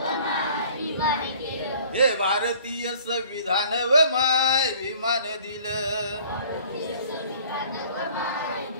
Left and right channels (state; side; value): inverted; both; correlation -0.52